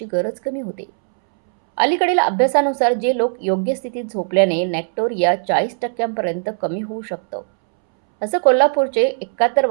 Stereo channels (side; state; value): left; silent; 67 dB below the other